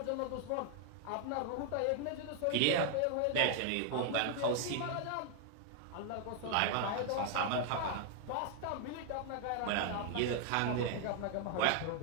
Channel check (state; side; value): different; both; correlation 0.00